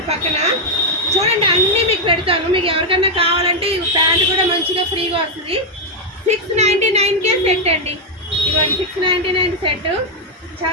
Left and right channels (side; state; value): both; normal; correlation 0.01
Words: పక్కన. చూడండి అన్నీ మీకు పెడతాను. మీకు ఎవరికన్నా కావాలంటే ఈ ప్యాంట్ కూడా మంచిగా ఫ్రీగా వస్తుంది. 699కే సెట్ అండి. ఇవన్నీ 699 సెట్.